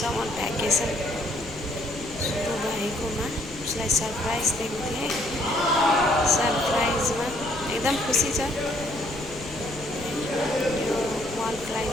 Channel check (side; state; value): left; noise; rumble, 15 dB below the sound